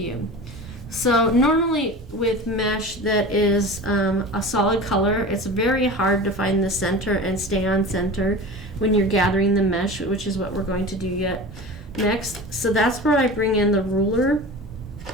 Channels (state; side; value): normal; both; correlation 0.33